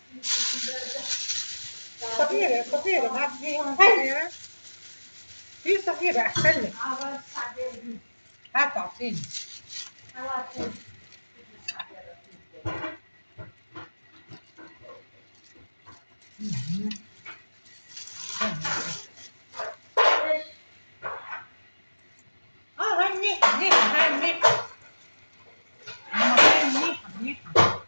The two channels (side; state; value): both; inverted; correlation -1.00